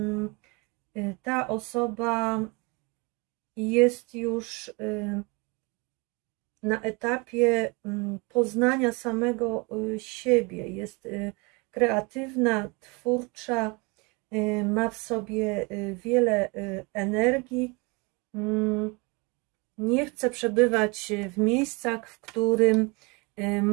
ta osoba jest już na etapie poznania samego siebie. Jest kreatywna, twórcza, ma w sobie wiele energii. Nie chce przebywać w miejscach, w którym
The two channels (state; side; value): quieter; left; 28.6 dB